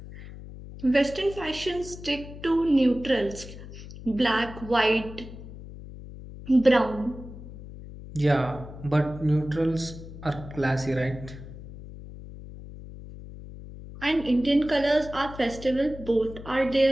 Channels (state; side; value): noise; left; hum, 14 dB below the sound